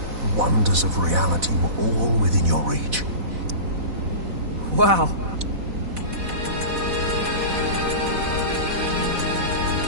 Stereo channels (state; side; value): late; left; 4.1 ms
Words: wonders of reality were all within your reach. Wow.